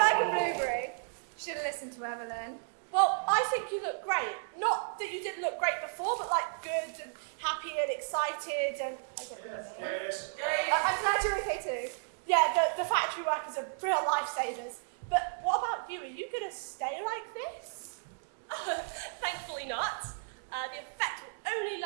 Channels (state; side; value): silent; left; digital silence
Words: a blueberry. Should have listened to Evelyn. Well, I think you look great. Not that you didn't look great before, but like good and happy and excited and... I'm glad you're okay too. Yeah, the factory workers are real lifesavers. But what about you? Are you going to stay like this? Thankfully not. The effect will only